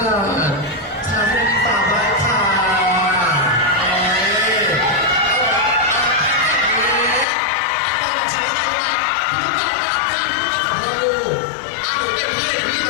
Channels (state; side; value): drops out; right; at 7.2 s